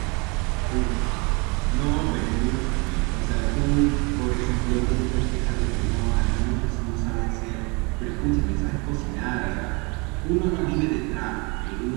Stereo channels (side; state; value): left; quieter; 29.7 dB